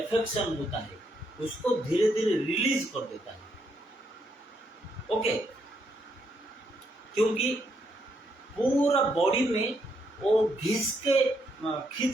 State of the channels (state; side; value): normal; both; correlation 0.76